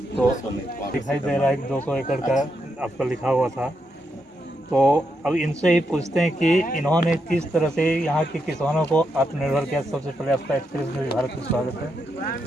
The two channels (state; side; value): normal; both; correlation 0.82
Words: तो दिखाई दे रहा है कि 200 एकड़ का आपका लिखा हुआ था। तो अब इनसे ही पूछते हैं कि इन्होंने किस तरह से यहाँ के किसानों को आत्मनिर्भर किया। सबसे पहले आपका एक्सप्रेस में भारत में स्वागत